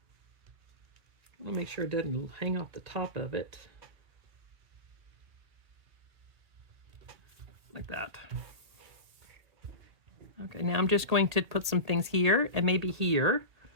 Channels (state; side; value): late; left; 1.8 ms